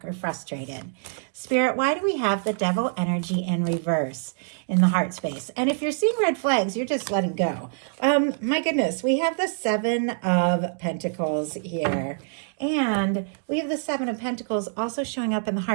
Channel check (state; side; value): silent; left; digital silence